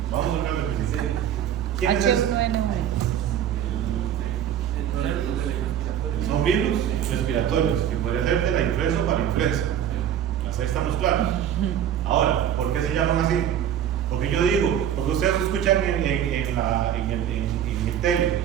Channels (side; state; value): left; quieter; 10.0 dB